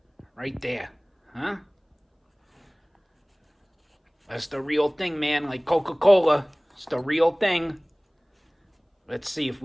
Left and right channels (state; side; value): identical; both; correlation 1.00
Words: Right there. Huh? That's the real thing, man. Like Coca-Cola. It's the real thing. Let's see if